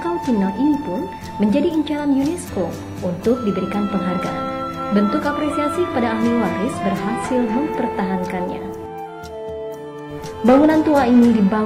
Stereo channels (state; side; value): identical; both; correlation 1.00